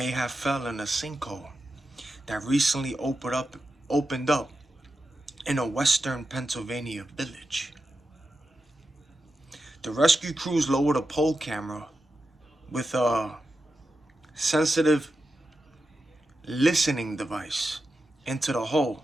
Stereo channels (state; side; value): normal; both; correlation 0.90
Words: have fell in a sinkhole that recently opened up in a western Pennsylvania village. The rescue crews lowered a pole camera with a sensitive listening device into the hole